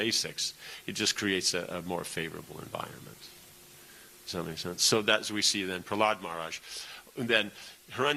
it just creates a more favorable environment. Does that make sense? So that's we see then Prahlad Maharaj. And then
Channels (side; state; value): both; identical; correlation 1.00